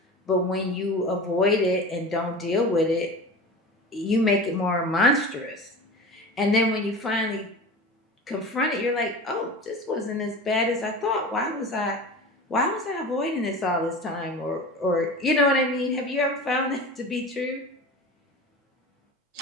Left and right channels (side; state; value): both; normal; correlation 0.32